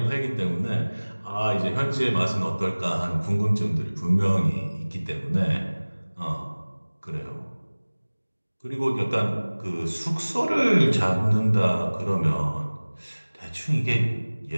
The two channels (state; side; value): inverted; both; correlation -1.00